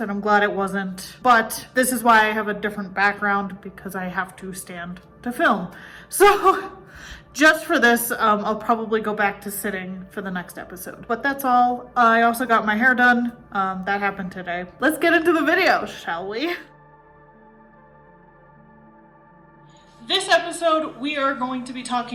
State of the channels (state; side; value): identical; both; correlation 1.00